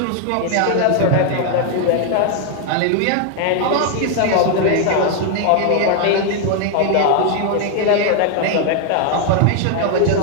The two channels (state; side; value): different; both; correlation 0.00